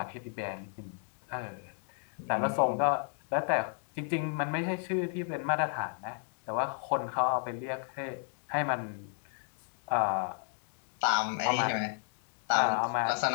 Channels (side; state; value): right; silent; 56 dB below the other